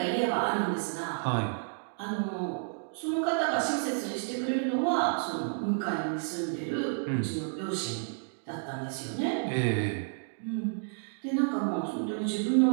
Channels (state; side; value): silent; left; digital silence